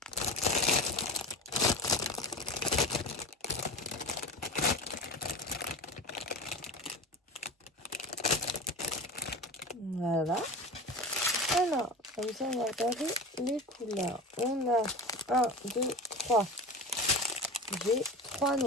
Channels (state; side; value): normal; both; correlation 0.30